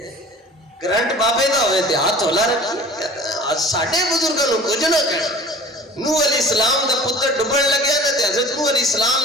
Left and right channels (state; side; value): normal; both; correlation 0.44